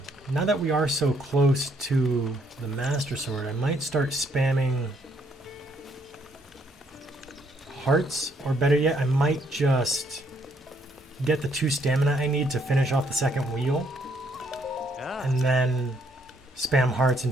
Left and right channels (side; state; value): both; normal; correlation 0.70